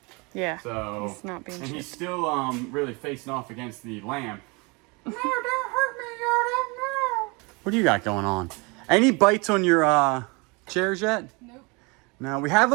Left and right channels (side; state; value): left; quieter; 28.4 dB